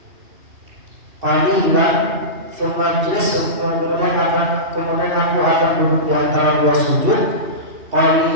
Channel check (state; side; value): late; left; 2.7 ms